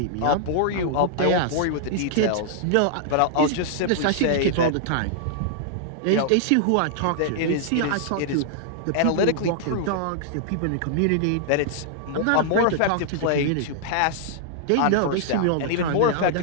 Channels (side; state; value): both; different; correlation -0.01